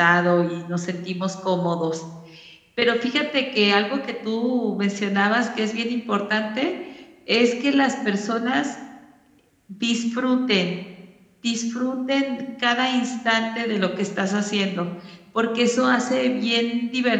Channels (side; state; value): both; identical; correlation 1.00